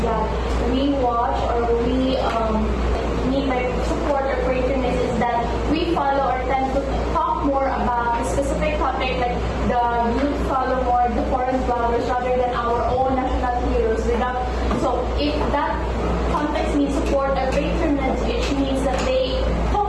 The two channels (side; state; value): both; identical; correlation 1.00